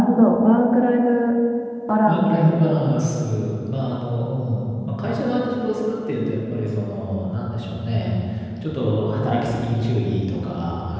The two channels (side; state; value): both; identical; correlation 1.00